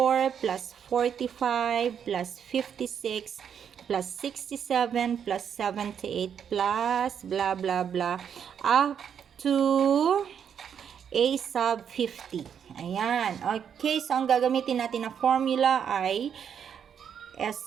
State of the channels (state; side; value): quieter; left; 8.0 dB